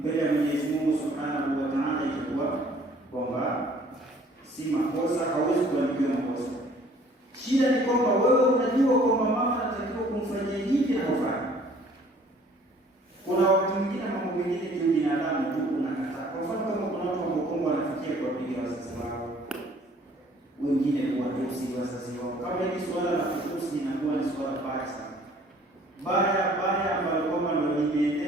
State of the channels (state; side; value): normal; both; correlation 0.56